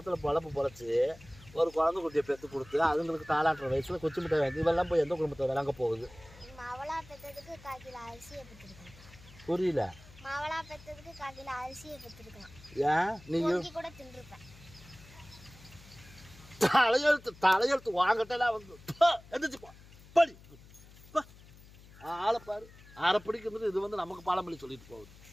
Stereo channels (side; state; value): left; noise; hum, 21 dB below the sound